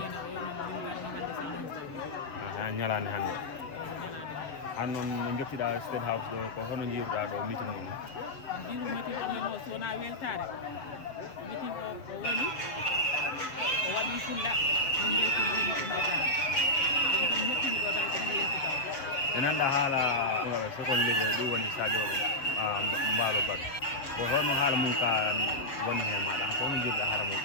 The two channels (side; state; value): right; late; 6.9 ms